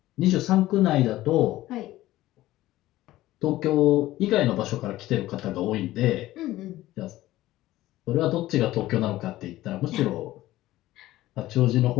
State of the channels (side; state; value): right; quieter; 16.0 dB